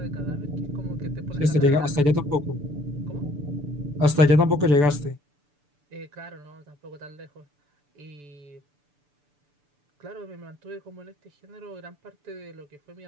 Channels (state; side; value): late; left; 6.9 ms